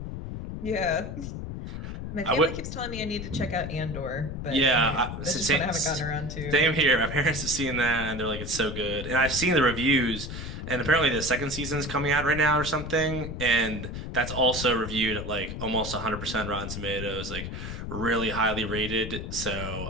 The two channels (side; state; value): left; noise; rumble, 7 dB below the sound